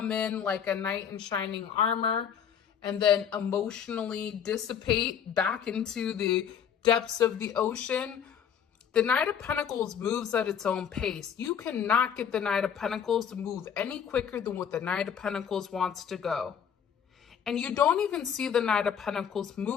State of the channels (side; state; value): right; quieter; 8.1 dB